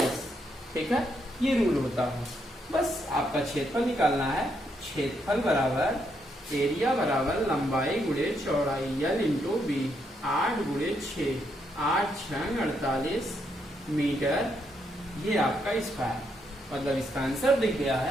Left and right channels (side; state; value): both; normal; correlation 0.77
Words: ठीक है, ये रूल होता है। बस आपका क्षेत्रफल निकालना है। क्षेत्रफल बराबर एरिया बराबर लंबाई गुणे चौड़ाई, L इंटू बी, 8 गुणे 6, 8 6 48 मीटर, ये आपका स्क्वायर, मतलब इसका आंसर दिख गया